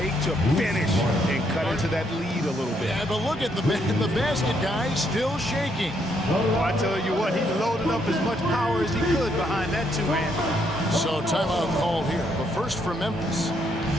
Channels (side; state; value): both; normal; correlation 0.73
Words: to finish and cut into that lead a little bit. Yeah, but look at the basket guy still shaking. Oh, I tell you what, he loaded up as much power as he could behind that two-hand. So timeout called here, but first for Memphis.